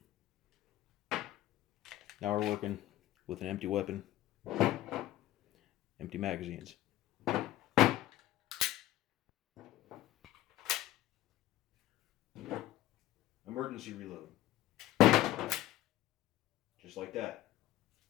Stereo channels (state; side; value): quieter; right; 14.8 dB